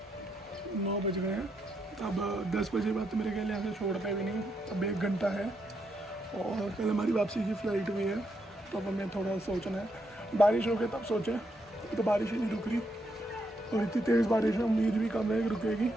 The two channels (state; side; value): normal; both; correlation 0.79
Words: 9 बज गए हैं। अब 10 बजे बाद तो मेरे ख्याल यहाँ से छोड़ते भी नहीं, अब 1 घंटा है और कल हमारी वापसी की फ़्लाइट भी है। तो अब हमें थोड़ा सोचना है, बारिश हो गई तब सोचें, तो बारिश ही नहीं रुक रही और इतनी तेज़ बारिश है, उम्मीद भी कम है कि रुकेगी।